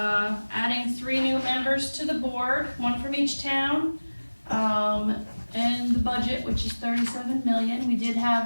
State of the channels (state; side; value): inverted; both; correlation -1.00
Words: adding 3 new members to the board, 1 from each town, and the budget, which is $37 million. We did